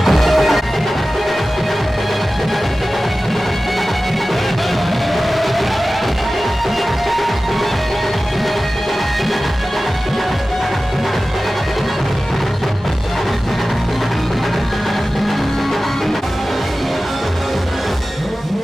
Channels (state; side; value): normal; both; correlation 0.96